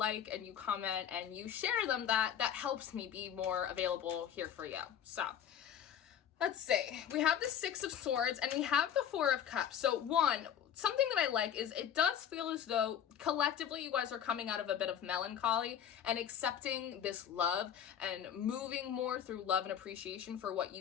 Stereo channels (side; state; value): right; quieter; 9.2 dB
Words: and you comment and you share them, that helps me be more available here for you. So let's see, we have the 6 of Swords and we have the 4 of Cups. So something that I like is it does feel as though collectively you guys are coming out of a bit of melancholy and accepting this love and moving more through love and appreciation for what